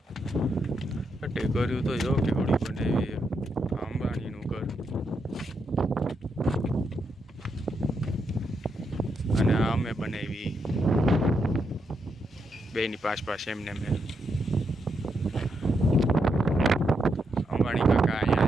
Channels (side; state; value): both; normal; correlation 0.81